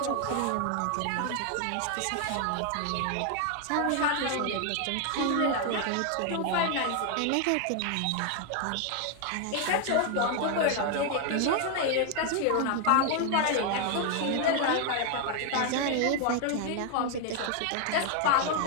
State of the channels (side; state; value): both; different; correlation 0.01